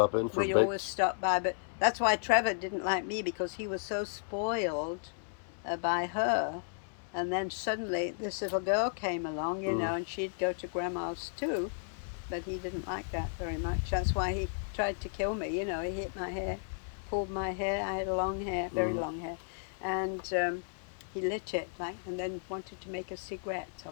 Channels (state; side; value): silent; right; digital silence